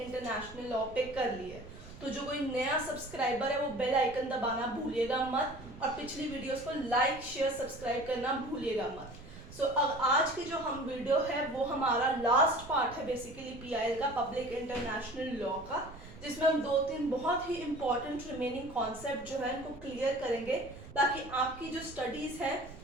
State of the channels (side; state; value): right; noise; rumble, 17 dB below the sound